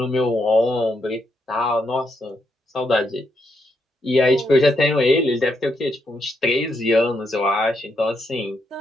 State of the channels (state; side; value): normal; both; correlation 0.79